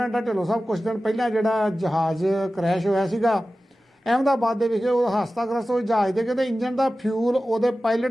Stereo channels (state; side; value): normal; both; correlation 0.95